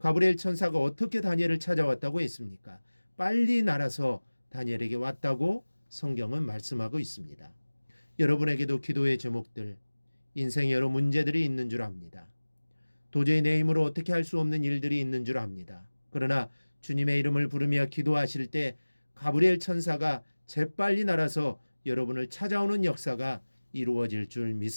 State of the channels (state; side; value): inverted; both; correlation -1.00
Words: 천사가 어떻게 다니엘을 찾아왔다고 했습니까? 빨리 날아서 다니엘에게 왔다고 성경은 말씀하고 있습니다. 여러분에게도 기도의 제목들, 인생에 여러 문제들이 있는 줄 압니다. 도저히 내 힘으로 어떻게 할 수 없는 일들이 있는 줄 압니다. 그러나 주님의 이름을 부르며 기도하실 때 가브리엘 천사가 재빨리 날아서 여러분을 찾아오는 역사가 이루어질 줄